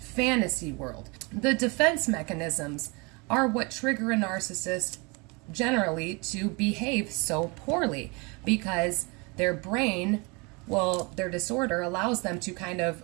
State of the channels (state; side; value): quieter; left; 28.8 dB